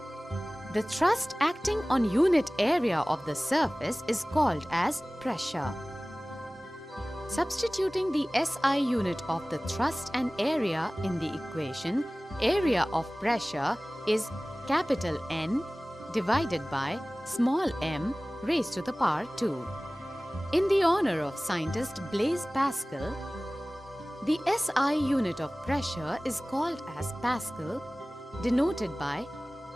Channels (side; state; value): both; normal; correlation 0.98